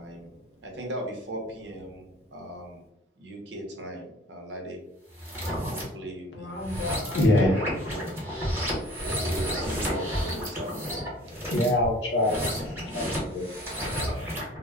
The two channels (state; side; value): normal; both; correlation 0.48